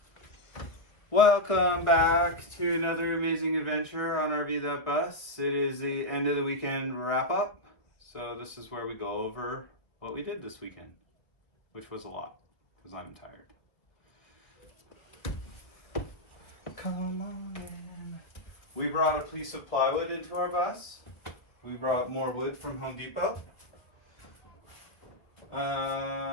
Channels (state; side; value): late; right; 1.2 ms